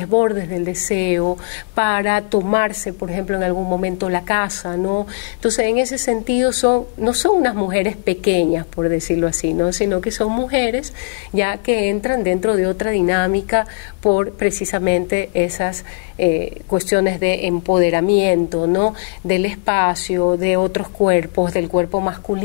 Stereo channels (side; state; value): right; quieter; 34.9 dB